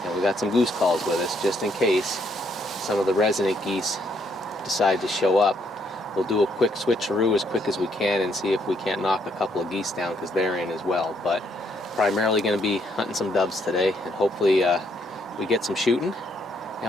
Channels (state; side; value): normal; both; correlation 0.71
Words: And we got some goose calls with us just in case some of the resident geese decide to show up. We'll do a quick switcheroo as quick as we can and see if we can't knock a couple of geese down, because they're in as well. But primarily going to be hunting some doves today, and hopefully we get some shooting